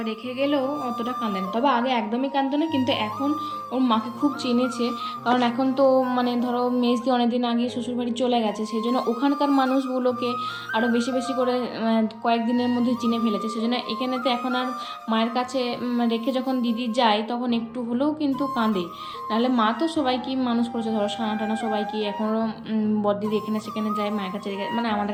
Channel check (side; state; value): both; identical; correlation 1.00